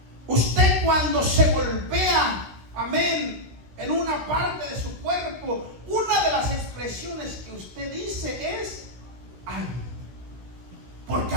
Usted cuando se golpea, amén, en una parte de su cuerpo, una de las expresiones que usted dice es ay, porque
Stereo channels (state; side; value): late; left; 16 ms